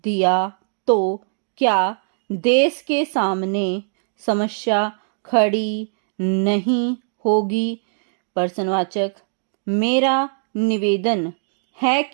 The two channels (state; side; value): silent; left; digital silence